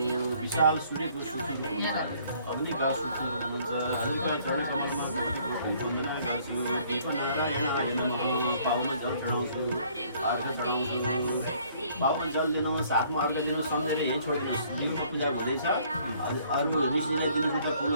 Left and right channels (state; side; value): inverted; both; correlation -0.61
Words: विशाल सूर्यको सुचुर हुनुहुन्छ, अग्निका सुचुर हुनुहुन्छ। हजुरका चरण कमलमा कोटि वन्दना गर्छु। दीपनारायणाय नमः। पाउन जल चढाउँछु, अर्घ चढाउँछु। पाउन जल दिनुहोस्, हातमा अर्घ दिनुहोस्, सम्झेर यहीँ छोडिदिनुहोस्। जिउमा पूजा हुँदैछ, अरू ऋषिले दिनुहुन्छ